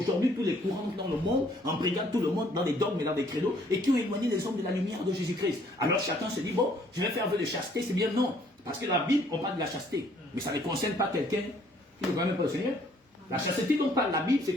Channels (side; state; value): both; normal; correlation 0.62